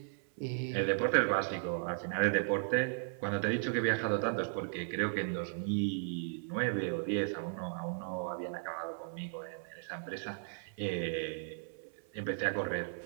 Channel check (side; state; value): left; silent; 54 dB below the other